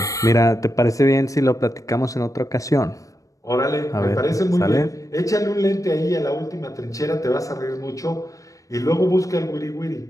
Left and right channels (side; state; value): right; late; 0.16 ms